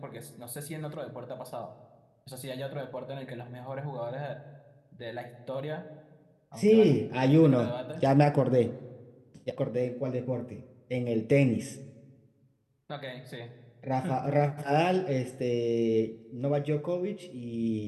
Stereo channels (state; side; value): identical; both; correlation 1.00